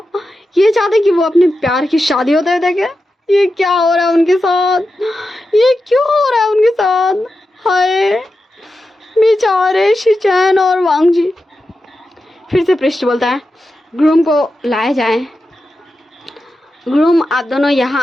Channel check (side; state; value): both; normal; correlation 0.90